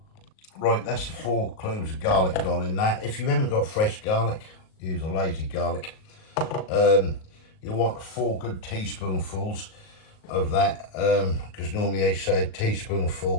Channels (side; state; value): right; late; 38 ms